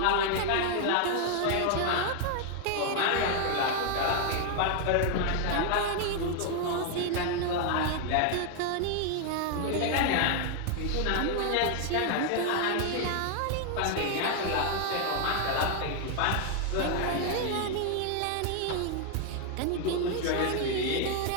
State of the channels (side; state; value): both; different; correlation 0.00